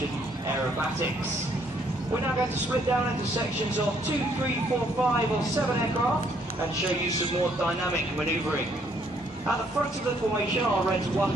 aerobatics. We're now going to split down into sections of 2, 3, 4, 5 or 7 aircraft and show you some more dynamic manoeuvring. At the front of the formation are Reds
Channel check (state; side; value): normal; both; correlation 0.68